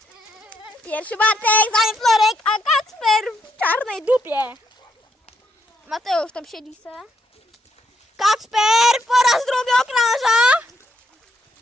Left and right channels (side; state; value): both; normal; correlation 0.77